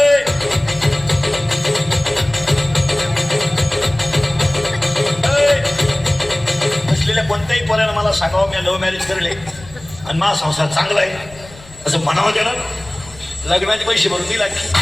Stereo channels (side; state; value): left; noise; rumble, 21 dB below the sound